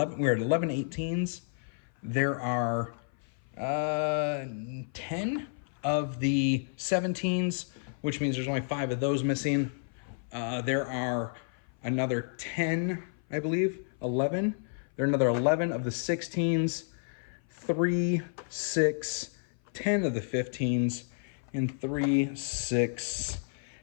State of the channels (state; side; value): silent; right; 55 dB below the other